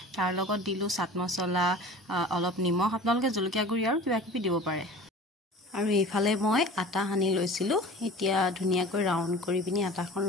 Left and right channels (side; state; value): both; normal; correlation 0.40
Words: তাৰ লগত দিলো চাট মছলা অলপ নিমখ আপোনালোকে জলকীয়া গুৰি আৰু কিবা কিবি দিব পাৰে আৰু এইফালে মই আটা হানি লৈছিলো এতিয়া ধুনিয়াকৈ ৰাউন্ড কৰি পিনি আটাখন